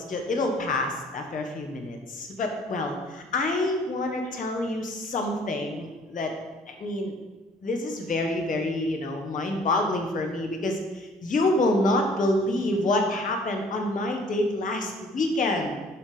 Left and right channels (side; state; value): both; normal; correlation 0.56